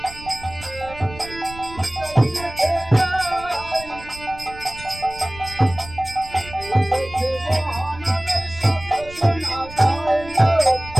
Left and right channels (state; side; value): noise; right; rumble, 16 dB below the sound